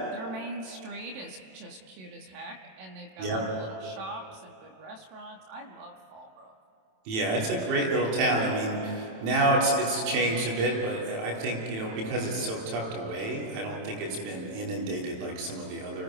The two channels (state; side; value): late; left; 27 ms